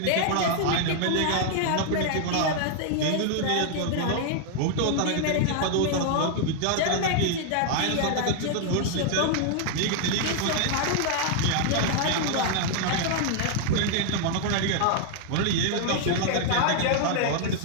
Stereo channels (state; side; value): different; both; correlation 0.00